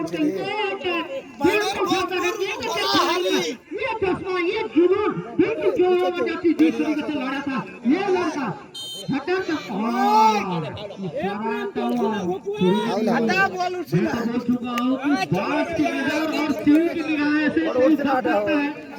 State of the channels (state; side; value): identical; both; correlation 1.00